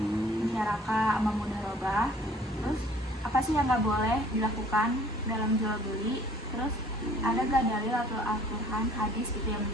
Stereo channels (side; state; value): both; normal; correlation 0.55